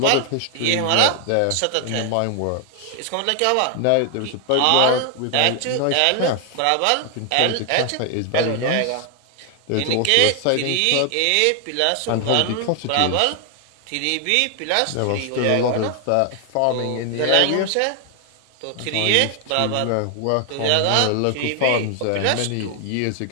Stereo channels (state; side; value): different; both; correlation 0.00